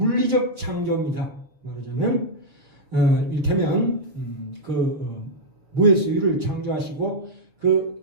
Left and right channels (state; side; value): late; left; 6.4 ms